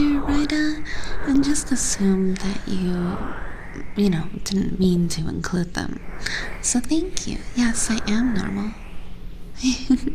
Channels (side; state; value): both; identical; correlation 1.00